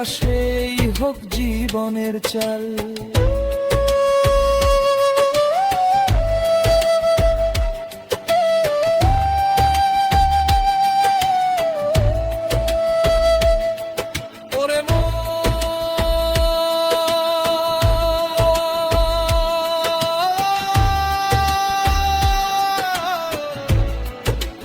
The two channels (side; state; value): both; identical; correlation 1.00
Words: হোক জীবনের চাল।